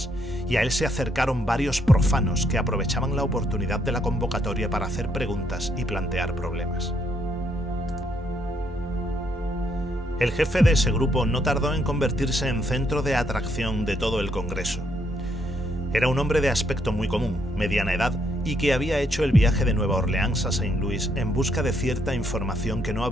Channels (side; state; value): both; normal; correlation 0.73